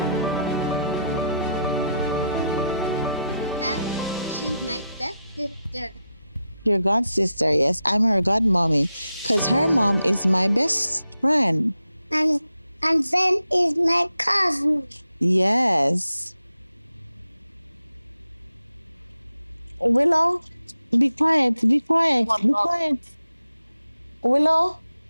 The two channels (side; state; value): both; inverted; correlation -0.86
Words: She's my stepsister. Your god sister, yes. I'm her godmommy. Because her mom is my best friend. And and then is my cousin. Yes. Willow, be quiet, be quiet, be quiet. Willow?